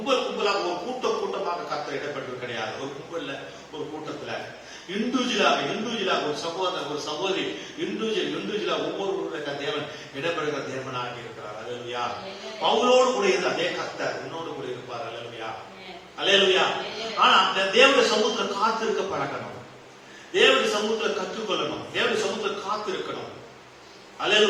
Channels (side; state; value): both; identical; correlation 1.00